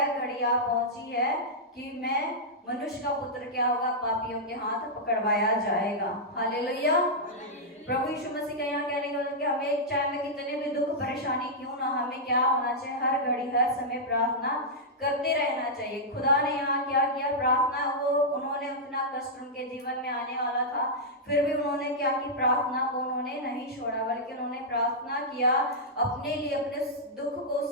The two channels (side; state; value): both; normal; correlation -0.09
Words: घड़ी आ पहुंची है कि मैं मनुष्य का पुत्र क्या होगा? पापियों के हाथ पकड़वाया जाएगा। हालेलुया। प्रभु यीशु मसीह का यहाँ कहने का कि हमें चाहे में कितने भी दुख परेशानी क्यों सुनो, हमें क्या होना चाहिए, हर घड़ी हर समय प्रार्थना करते रहना चाहिए। खुदा ने यहाँ क्या किया, प्रार्थना, वो उन्होंने उतना कष्ट उनके जीवन में आने वाला था, फिर भी उन्होंने क्या की, प्रार्थना को उन्होंने नहीं छोड़ा, बल्कि उन्होंने प्रार्थना किया, अपने लिए अपने दुख को,